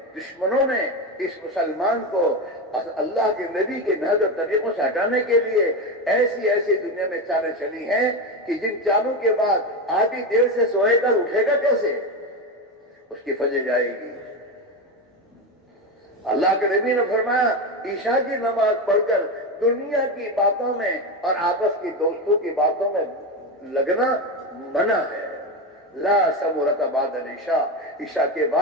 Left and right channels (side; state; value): both; normal; correlation 0.16